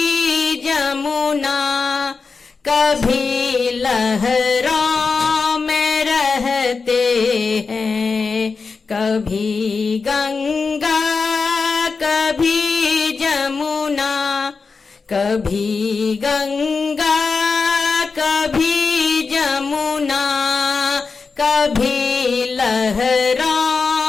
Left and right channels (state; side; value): quieter; right; 4.7 dB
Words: जमुना, कभी लहरों में रहते हैं। कभी गंगा कभी जमुना, कभी गंगा कभी जमुना, कभी